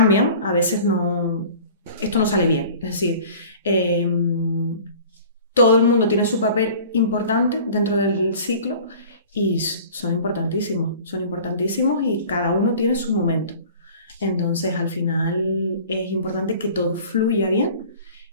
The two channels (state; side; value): inverted; both; correlation -0.44